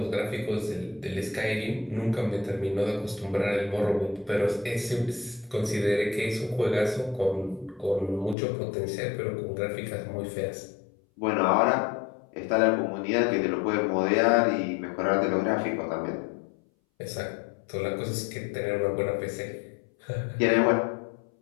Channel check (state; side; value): drops out; right; at 8.3 s